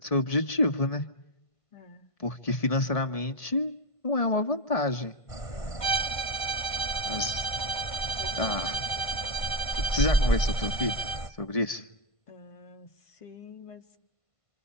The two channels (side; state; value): right; late; 1.5 ms